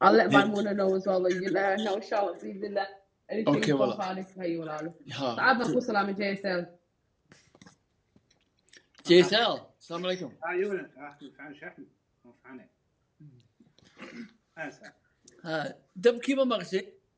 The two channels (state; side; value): identical; both; correlation 1.00